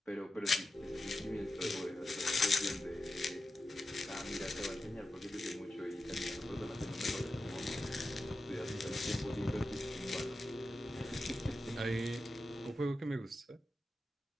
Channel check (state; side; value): normal; both; correlation 0.91